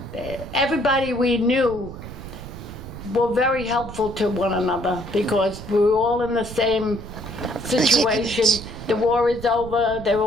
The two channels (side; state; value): right; noise; rumble, 12 dB below the sound